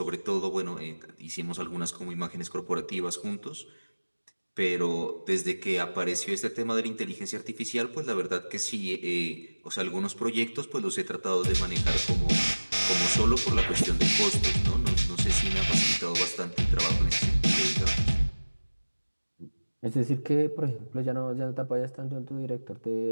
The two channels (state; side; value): inverted; both; correlation -1.00